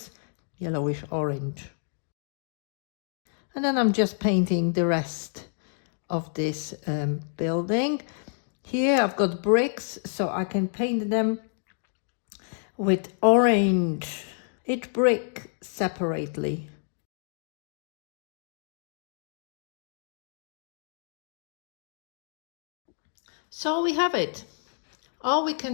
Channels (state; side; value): silent; right; digital silence